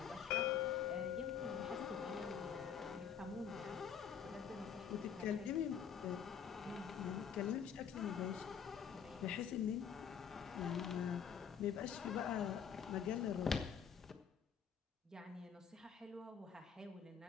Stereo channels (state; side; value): quieter; right; 7.7 dB